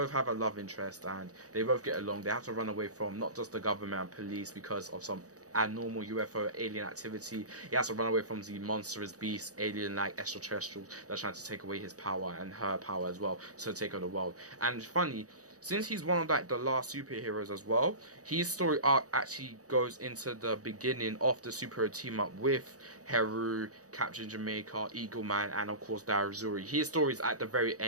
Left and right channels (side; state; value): left; late; 0.67 ms